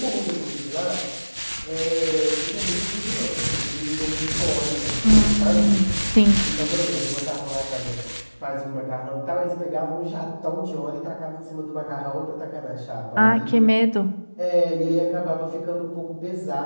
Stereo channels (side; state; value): both; inverted; correlation -1.00